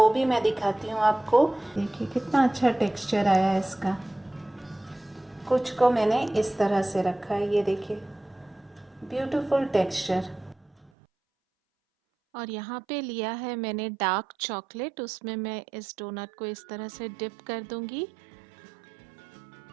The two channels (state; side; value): drops out; left; at 10.9 s